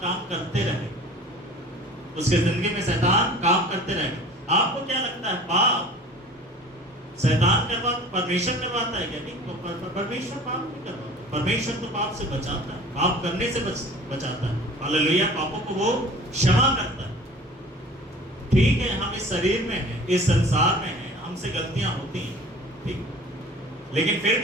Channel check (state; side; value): normal; both; correlation 0.44